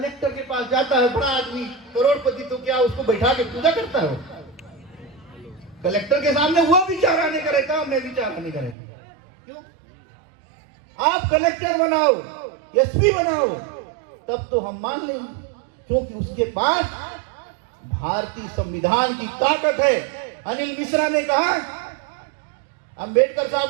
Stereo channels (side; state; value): left; drops out; at 8.8 s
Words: के पास जाता है बड़ा आदमी, करोड़पति, तो क्या उसको बैठा के पूजा करता है? कलेक्टर के सामने वो विचारा नहीं करेगा, मैं विचारा नहीं करेगा। क्यों? आप कलेक्टर बनाओ, एसपी बनाओ, तब तो हम मान लेंगे, क्योंकि उसके पास भारतीय संविधान की ताकत है। अनिल मिश्रा ने कहा अंबेडकर साहब